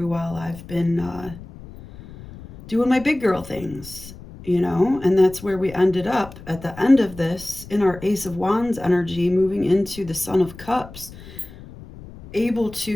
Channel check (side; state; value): left; noise; rumble, 17 dB below the sound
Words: while I've been doing my big girl things, and that's where we ended up at the end of this in our Ace of Wands energy, moving into the Son of Cups, able